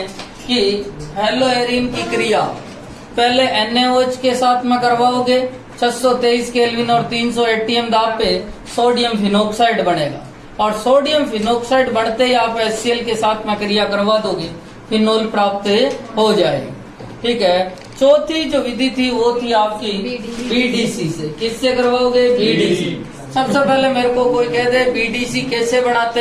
कि हेलो एरिन की क्रिया पहले NaOH के साथ में करवाओगे, 623 केल्विन और 300 ATM दाब पे सोडियम फिनोक्साइड बनेगा। और सोडियम फिनोक्साइड बढ़ते ही आप HCl के साथ में क्रिया करवा दोगे, फिनोल प्राप्त हो जाएगी। ठीक है। चौथी जो विधि थी वो थी आपकी BDC से। किससे करवाओगे? BDC। सबसे पहले मेरे को कोई कह दे BDC कैसे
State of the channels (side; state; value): both; identical; correlation 1.00